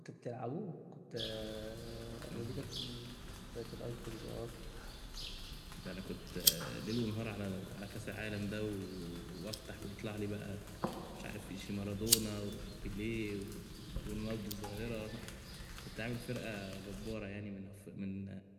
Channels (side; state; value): both; identical; correlation 1.00